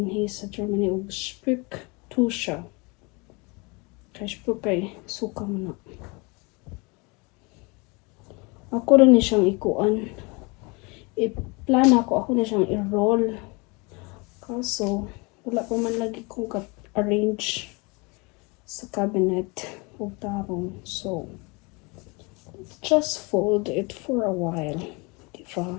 sa Germany og Spücktusche. Kay Spük kay suka mo na. Ako rin ni siyang ikuan. I-plan ako na siyang i-roll. Kaso, wala pa man lagi kong arrange sa cabinet o tarong. So, just fold it for a while. Diba?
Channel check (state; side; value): quieter; right; 28.5 dB